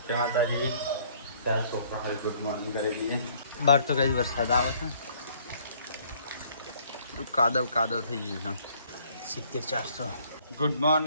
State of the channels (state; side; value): inverted; both; correlation -0.61